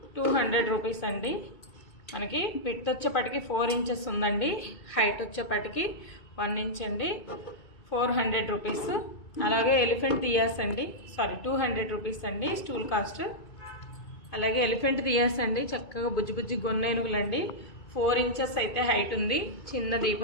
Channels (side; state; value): right; late; 2.2 ms